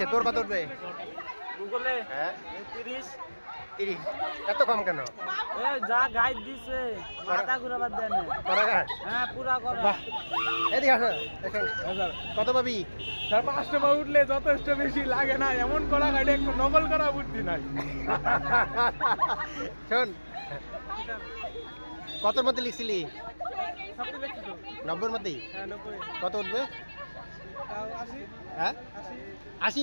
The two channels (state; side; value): inverted; both; correlation -1.00